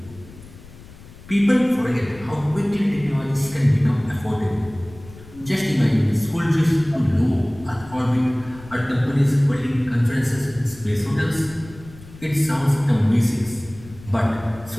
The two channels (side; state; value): left; noise; rumble, 19 dB below the sound